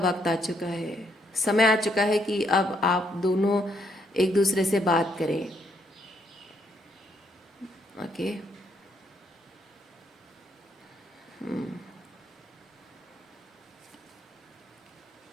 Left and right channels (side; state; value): both; normal; correlation 0.73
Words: आ चुका है, समय आ चुका है कि अब आप दोनों एक दूसरे से बात करें। ओके,